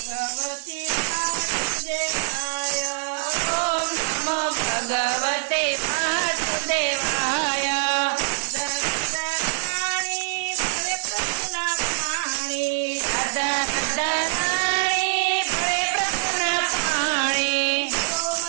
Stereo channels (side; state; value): left; silent; 62 dB below the other